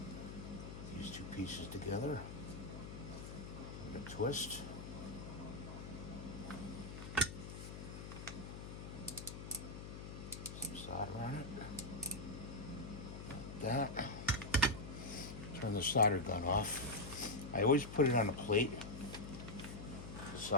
these two pieces together. With a twist. Some solder on it. Like that. Turn the solder gun off. I always put it on a plate, the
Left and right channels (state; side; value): noise; left; hum, 9 dB below the sound